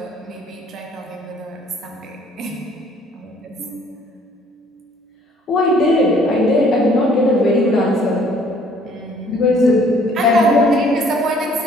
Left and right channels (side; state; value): both; normal; correlation 0.59